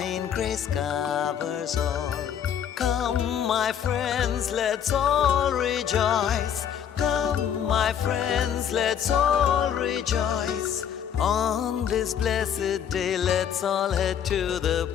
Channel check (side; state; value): right; quieter; 8.8 dB